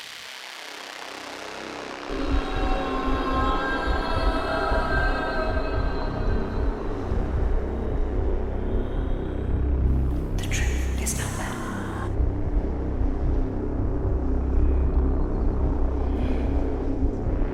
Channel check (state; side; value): identical; both; correlation 1.00